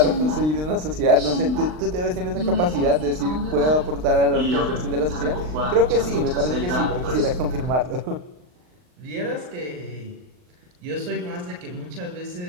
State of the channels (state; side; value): late; left; 39 ms